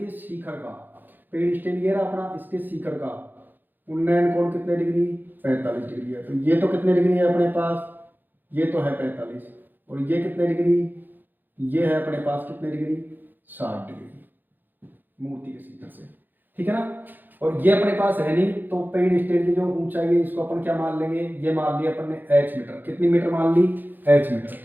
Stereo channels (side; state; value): left; late; 0.088 ms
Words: शिखर का, पेड़ स्टेल ये रहा अपना, इसके शिखर का उन्नयन कोण कितने डिग्री, 45 डिग्री है। तो ये तो कितने डिग्री है अपने पास, ये तो है 45, और ये कितने डिग्री, ये है अपने पास कितने डिग्री, 60 डिग्री मूर्ति के शिखर से, ठीक है ना। और ये अपने पास है नहीं, तो पेड़ स्टेल की जो ऊंचाई है इसको अपन क्या मान लेंगे, ये मान लिया अपन ने h मीटर, कितनी मीटर मान ली, h मीटर,